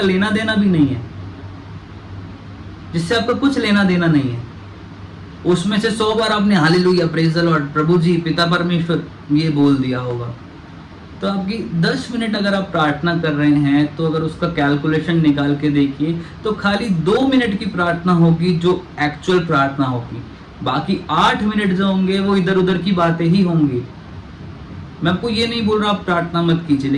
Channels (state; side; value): identical; both; correlation 1.00